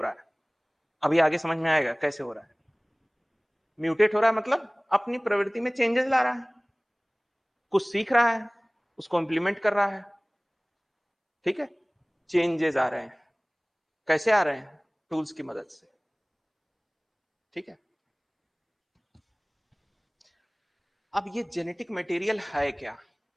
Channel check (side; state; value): both; identical; correlation 1.00